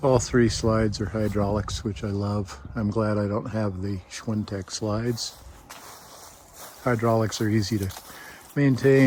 All three slides are hydraulics, which I love. I'm glad I don't have the Schwintek slides. Hydraulics are easy to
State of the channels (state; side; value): identical; both; correlation 1.00